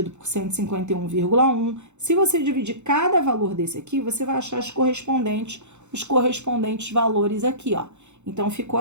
por 151,1. Se você dividir cada valor desse aqui, você vai achar os correspondentes valores aqui, ó. Então, ficou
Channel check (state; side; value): late; left; 0.83 ms